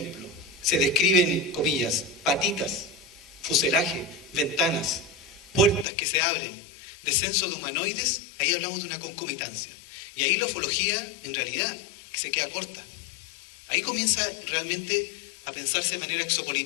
se describen, comillas, patitas, fuselaje, ventanas, puertas que se abren, descenso de humanoides, ahí hablamos de una concomitancia. Y ahí la ufología, en realidad, se queda corta. Ahí comienza realmente a pensarse de manera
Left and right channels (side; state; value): right; drops out; at 5.9 s